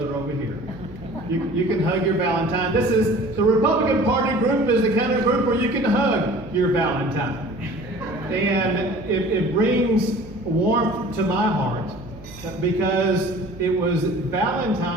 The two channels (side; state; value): right; noise; hum, 19 dB below the sound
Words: over here. You can hug your Valentine. This is, the Republican Party group is the kind of group where you can hug your Valentine. And it brings warmth to my heart because it was